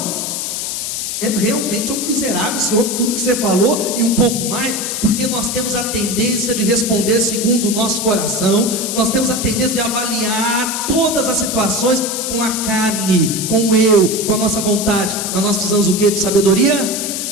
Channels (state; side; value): noise; left; hiss, 3 dB below the sound